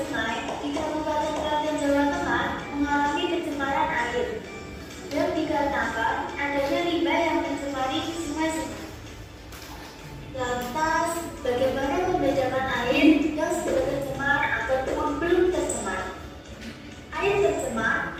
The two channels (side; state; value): both; identical; correlation 1.00